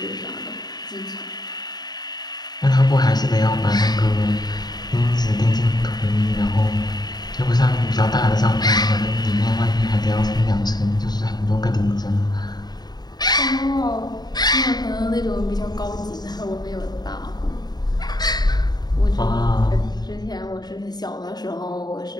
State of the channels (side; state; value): right; late; 0.20 ms